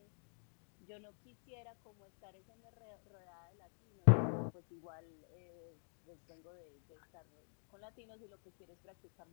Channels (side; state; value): right; silent; digital silence